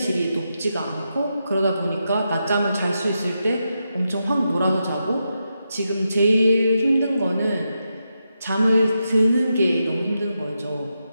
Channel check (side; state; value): both; inverted; correlation -0.86